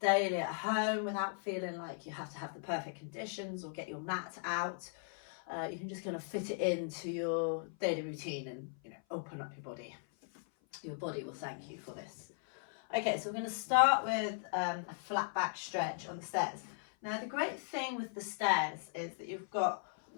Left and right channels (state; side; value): silent; right; 53 dB below the other